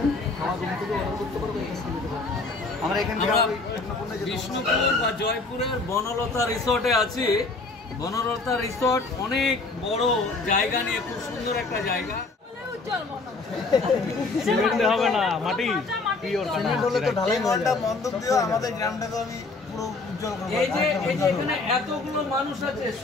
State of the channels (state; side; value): quieter; right; 3.6 dB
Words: খাওয়া রুম থেকে অর্ডার করতে পারবে, আমরা এখান থেকে বিষ্ণুপুর বা জয়পুরের বনলতা রিসোর্টে আছি। বনলতা রিসোর্ট অনেক বড় জায়গা নিয়ে, খুব সুন্দর একটা জায়গা। সিমেন্ট হবে না, মাটি সিমেন্ট হলে তো ঢালাই মনটা মন্দক দিও আমাদের গ্রামটা তো আমি পুরো উজ্জ্বল করব। এই যে এখানে এতগুলো মানুষ আছে,